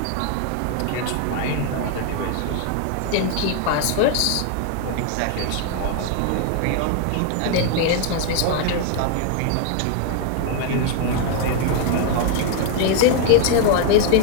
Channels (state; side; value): different; both; correlation 0.00